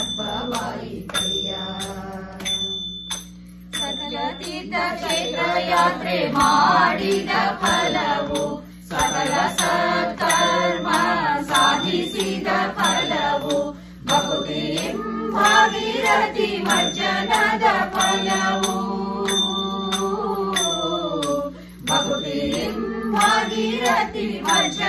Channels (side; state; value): both; identical; correlation 1.00